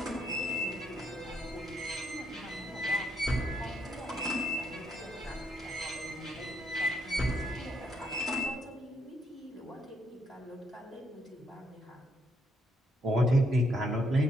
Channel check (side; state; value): both; normal; correlation 0.73